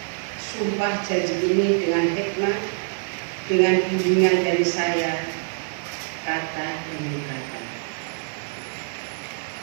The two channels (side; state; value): left; silent; 56 dB below the other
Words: sumpah janji ini dengan hikmat, dengan bimbingan dari saya, kata demi kata.